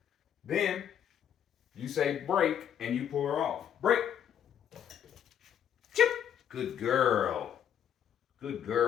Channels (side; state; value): right; quieter; 9.3 dB